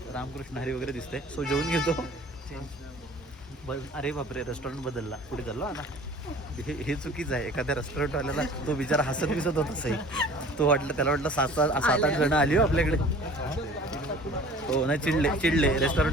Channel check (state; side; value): normal; both; correlation 0.46